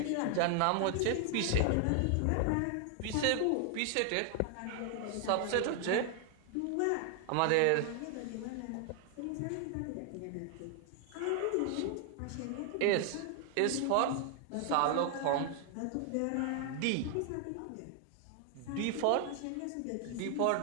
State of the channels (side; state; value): both; different; correlation 0.00